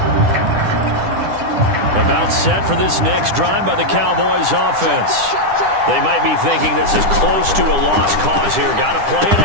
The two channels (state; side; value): late; left; 10 ms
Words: About set for this next drive by the Cowboys offense. They might be thinking this is close to a lost cause here. Got to play it